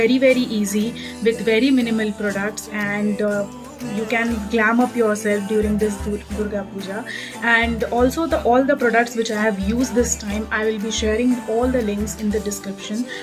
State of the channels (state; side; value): identical; both; correlation 1.00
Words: easy with very minimal products, and you can glam up yourself during this Durga Puja. And also all the products which I have used this time, I will be sharing all the links in the description,